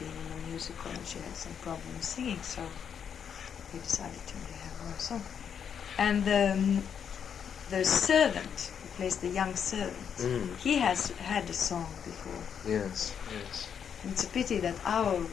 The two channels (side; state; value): right; quieter; 7.7 dB